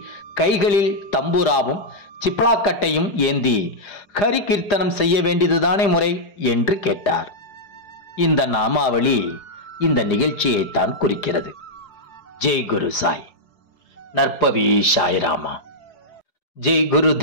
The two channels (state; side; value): late; right; 4.9 ms